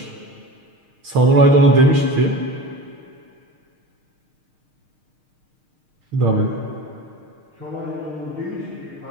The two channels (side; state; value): left; late; 6.5 ms